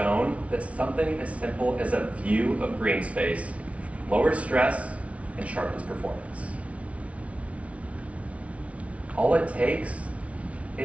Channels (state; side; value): late; left; 0.064 ms